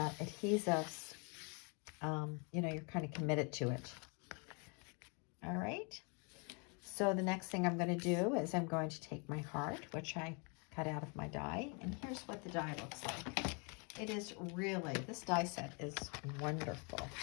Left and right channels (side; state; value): right; quieter; 34.4 dB